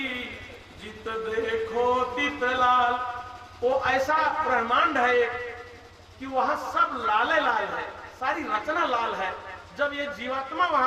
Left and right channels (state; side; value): identical; both; correlation 1.00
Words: जित देखो तित लाल। वो ऐसा ब्रह्मांड है कि वहां सब लाले लाल है, सारी रचना लाल है। जब ये जीवात्मा